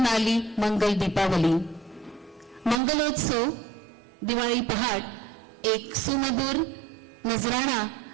आली मंगल दीपावली. मंगलोत्सव दिवाळी पहाट एक सुमधुर नजराणा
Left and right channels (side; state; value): left; drops out; at 2.8 s